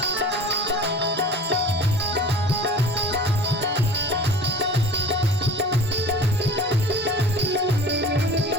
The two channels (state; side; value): normal; both; correlation 0.41